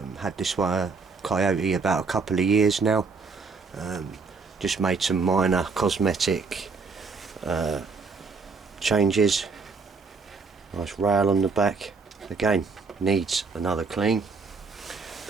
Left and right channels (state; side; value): quieter; left; 4.6 dB